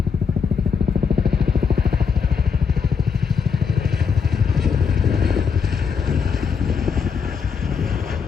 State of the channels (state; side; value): quieter; right; 6.1 dB